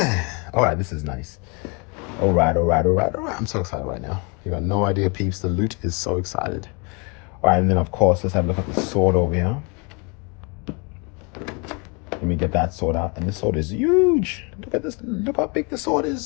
All right, this is nice. All right. I'm so excited right now. You got no idea, peeps. The loot is so excited. All right, and then, of course, let's have a look at the sword over here. Let me get that sword out. And this sword is huge. Look at this. Look how big the sword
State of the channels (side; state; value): right; quieter; 32.3 dB